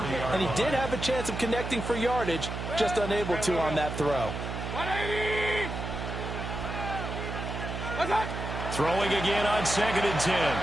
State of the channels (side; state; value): right; noise; hum, 5 dB below the sound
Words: and he did have a chance of connecting for yardage, just unable to on that throw. Throwing again on 2nd and 10.